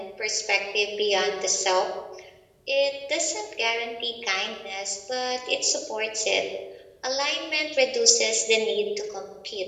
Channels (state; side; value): identical; both; correlation 1.00